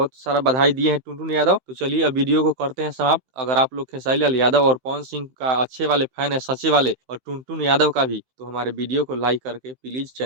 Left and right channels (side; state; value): left; late; 15 ms